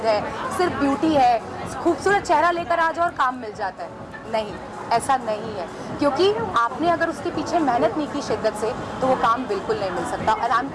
है, सिर्फ ब्यूटी है, खूबसूरत चेहरा लेकर आ जाओ और काम मिल जाता है। नहीं, ऐसा नहीं है, क्योंकि आपने अगर उसके पीछे मेहनत नहीं की शिद्दत से तो वो काम बिल्कुल नहीं मिल सकता। और I am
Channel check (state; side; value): identical; both; correlation 1.00